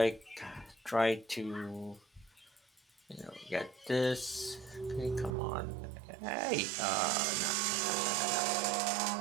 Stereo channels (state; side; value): drops out; left; at 5.4 s